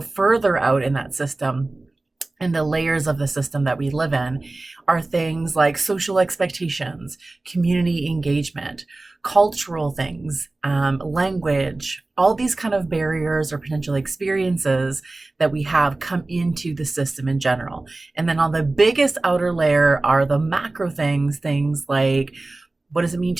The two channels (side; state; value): left; quieter; 3.1 dB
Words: out in that system, and the layers of the system that we live in are things like social expectations, community engagement, cultural things, language, all these kind of barriers or potential experiences that we have come into the system in general. And then on the biggest outer layer are the macro things like, what does it mean